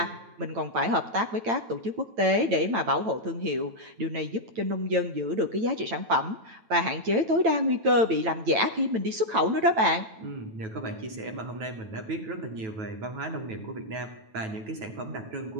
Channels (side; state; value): left; late; 9.0 ms